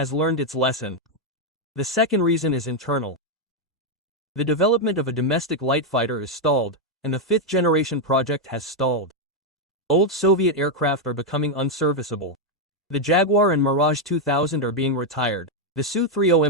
learned its lesson. The second reason is internal. The development of a domestic light fighter is stalled, and the 5th generation project has stalled. Old Soviet aircraft are becoming unserviceable. The Jaguar and Mirage 2000 are being retired. The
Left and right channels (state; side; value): normal; both; correlation 0.02